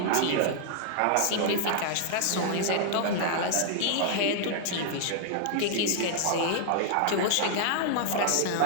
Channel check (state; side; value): different; both; correlation -0.01